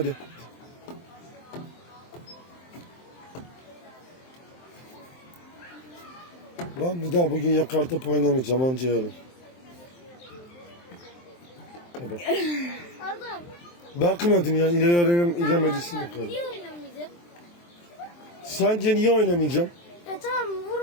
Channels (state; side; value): late; right; 23 ms